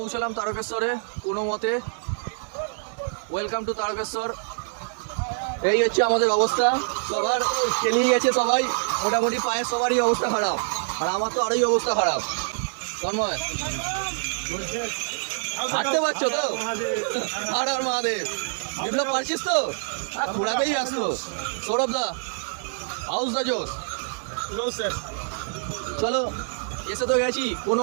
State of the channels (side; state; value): left; silent; digital silence